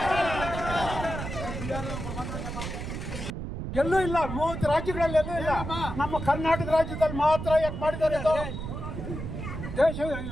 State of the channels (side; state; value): right; noise; rumble, 6 dB below the sound